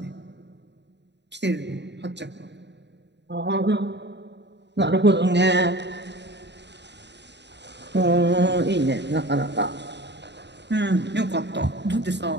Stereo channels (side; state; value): left; late; 0.51 ms